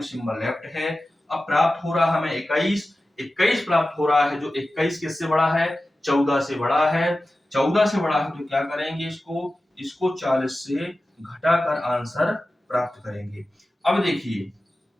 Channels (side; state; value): both; normal; correlation 0.95